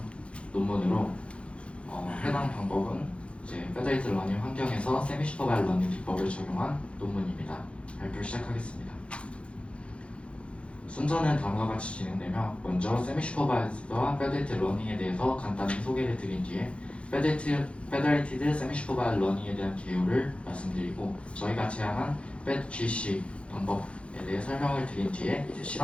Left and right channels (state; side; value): late; right; 0.060 ms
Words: 논문으로 해당 방법은 이제 Federated Learning 환경에서 Semi-Supervised Learning 기법을 적용한 논문입니다. 발표 시작하겠습니다. 순서는 다음과 같이 진행되며 먼저 Semi-Supervised와 Federated Learning에 대해서 간단히 소개를 드린 뒤에 Federated Semi-Supervised Learning에 대한 개요를 말씀드리고 저희가 제안한 FEDGC 방법에 대해 설명을 드린 뒤에 이제